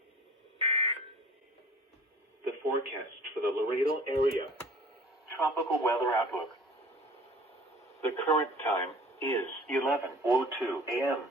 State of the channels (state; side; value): normal; both; correlation 0.46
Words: The forecast for the Laredo area. Tropical weather outlook. The current time is 11:02 a.m.